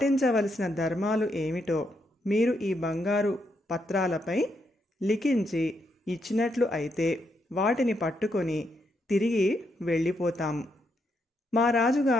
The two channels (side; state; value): both; normal; correlation 0.79